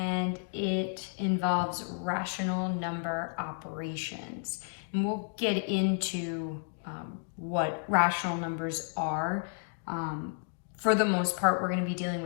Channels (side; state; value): right; silent; 57 dB below the other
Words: it involves rational number operations. And we'll get into what rational numbers are. For the most part, we're going to be dealing